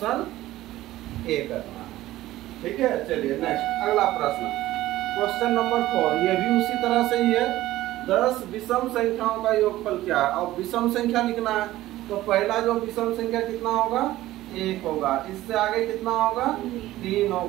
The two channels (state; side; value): quieter; left; 15.7 dB